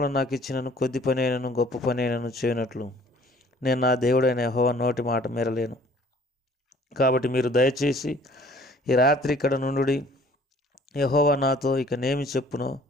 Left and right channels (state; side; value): normal; both; correlation 0.55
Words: నాకు ఇచ్చినను కొద్ది పని అయినను గొప్ప పని అయినను చేయనట్లు నేను నా దేవుడైన యెహోవా నోటి మాట మీరలేను. కాబట్టి మీరు దయచేసి ఈ రాత్రి ఇక్కడ నుండుడి. యెహోవా నాతో ఇక నేమి చెప్పునో